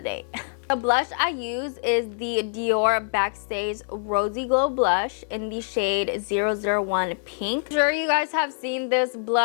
day. The blush I use is the Dior Backstage Rosy Glow Blush in the shade 001 Pink. I'm sure you guys have seen this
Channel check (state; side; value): silent; right; 62 dB below the other